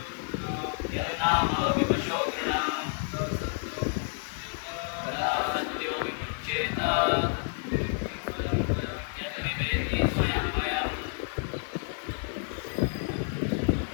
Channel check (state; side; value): silent; right; 58 dB below the other